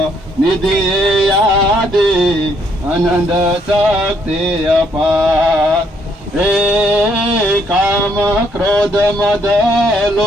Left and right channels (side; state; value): both; normal; correlation 0.70